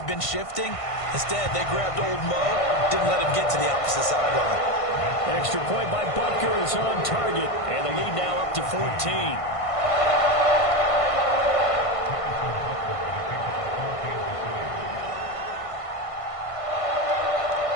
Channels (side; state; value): right; late; 1.5 ms